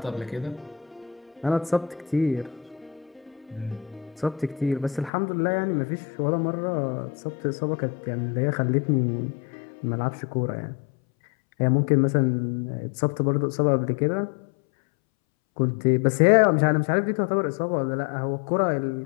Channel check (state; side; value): drops out; right; at 5.1 s